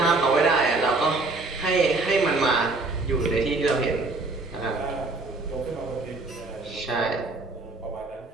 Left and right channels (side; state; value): left; quieter; 3.4 dB